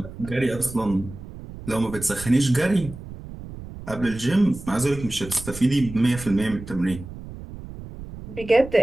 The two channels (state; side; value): noise; right; rumble, 13 dB below the sound